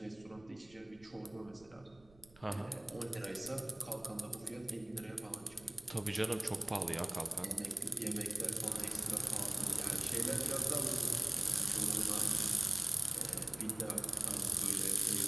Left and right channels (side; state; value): right; noise; rumble, 26 dB below the sound